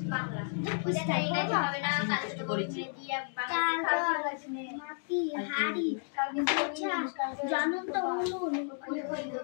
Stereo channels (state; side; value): silent; right; 56 dB below the other